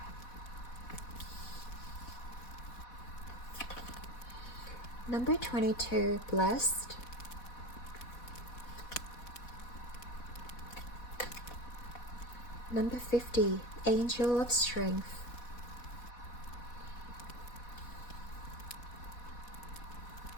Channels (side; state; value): right; late; 4.1 ms